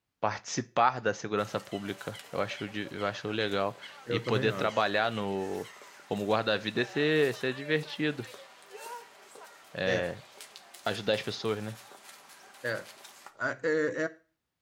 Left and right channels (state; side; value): identical; both; correlation 1.00